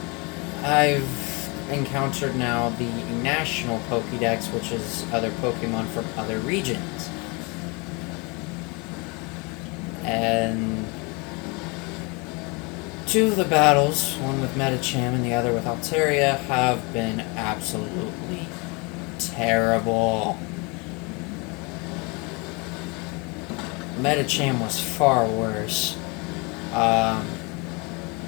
encountered now the National Pokédex, which is other Pokemon from other regions. And 2 of the battles, one with Medicham and the other with Altaria, have been absolutely terrible. Medicham was far worse.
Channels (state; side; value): quieter; right; 29.4 dB